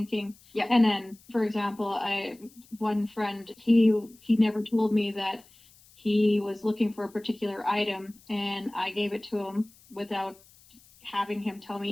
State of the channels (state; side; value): noise; left; hiss, 27 dB below the sound